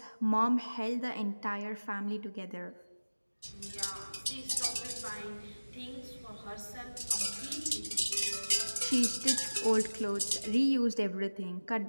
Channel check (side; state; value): both; inverted; correlation -1.00